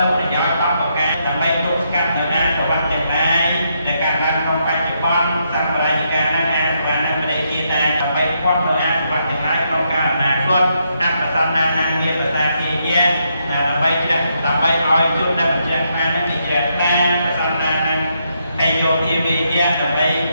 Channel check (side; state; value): both; inverted; correlation -0.78